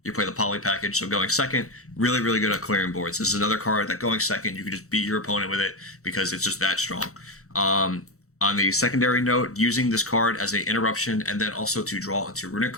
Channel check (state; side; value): late; right; 0.64 ms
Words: you play the poly package, so going second, really good at clearing boards. This is another card that going second, you can just beat your opponent with it because it's just that strong. On the secondary note, using this card as an interruption and then also to draw into Runick